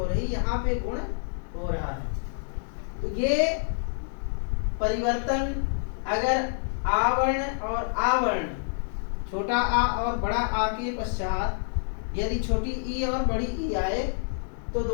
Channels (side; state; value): right; silent; digital silence